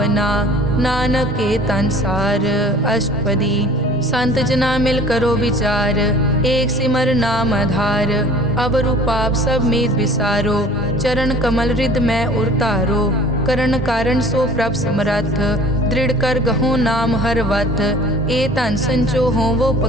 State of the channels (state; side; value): normal; both; correlation 0.47